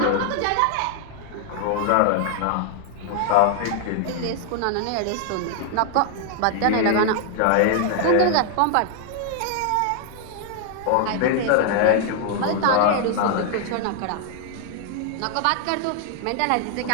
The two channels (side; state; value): both; different; correlation 0.00